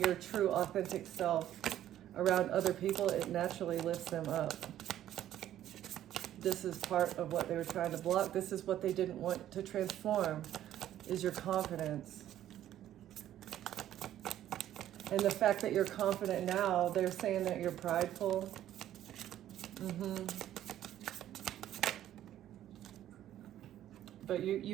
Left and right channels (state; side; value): quieter; left; 12.1 dB